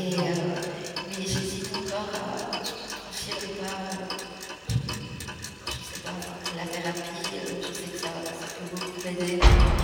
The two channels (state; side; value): identical; both; correlation 1.00